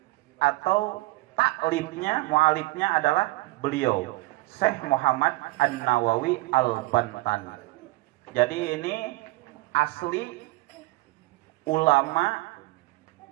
atau taklifnya, mualifnya adalah beliau Syekh Muhammad An-Nawawi Al-Bantani. Jadi ini asli ulama,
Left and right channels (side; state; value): left; quieter; 21.1 dB